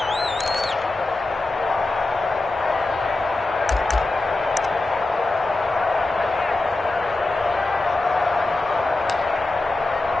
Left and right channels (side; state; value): right; quieter; 3.1 dB